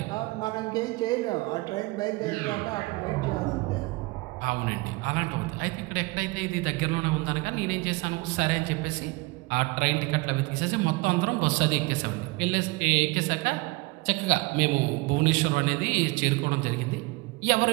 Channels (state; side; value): quieter; left; 24.3 dB